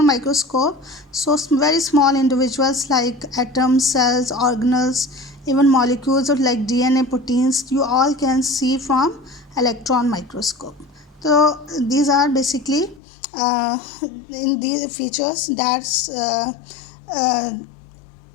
microscope. So very small individuals like atoms, cells, organelles, even molecules of like DNA, proteins, you all can see from electron microscope. So these are basically in these features. That's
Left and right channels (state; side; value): drops out; right; at 13.0 s